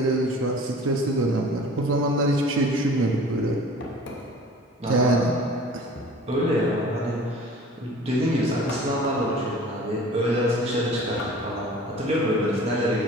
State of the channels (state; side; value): normal; both; correlation 0.44